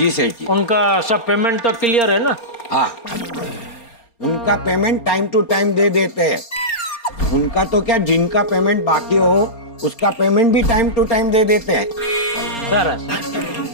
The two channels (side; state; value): right; late; 4.3 ms